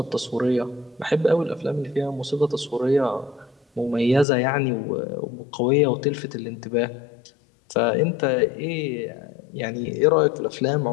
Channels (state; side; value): drops out; right; at 4.2 s